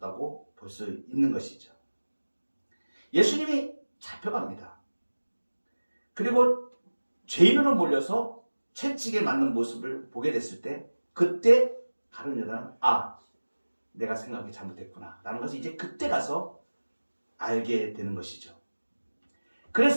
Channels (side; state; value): both; inverted; correlation -1.00